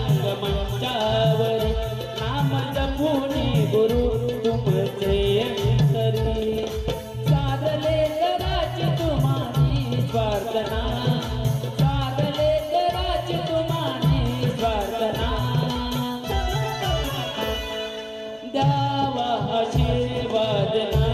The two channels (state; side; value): identical; both; correlation 1.00